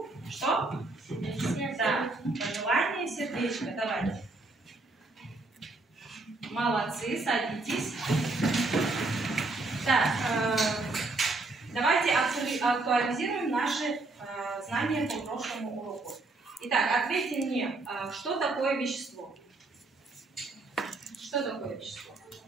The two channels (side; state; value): left; quieter; 3.2 dB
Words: что? Да, пожелание сердечко. Давайте. Молодцы, садитесь. Так, давайте актуализируем наши знания по прошлому уроку. Итак, ответьте мне, что такое вещество? Что такое вещество?